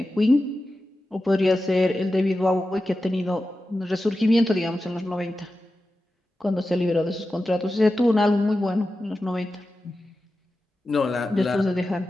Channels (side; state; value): both; normal; correlation 0.92